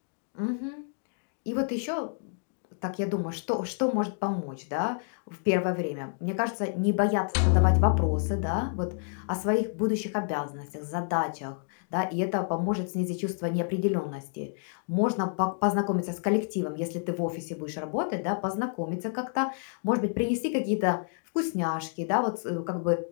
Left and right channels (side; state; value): right; silent; 58 dB below the other